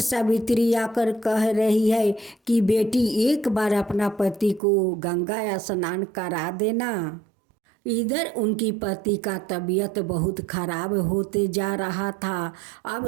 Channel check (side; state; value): left; drops out; at 4.6 s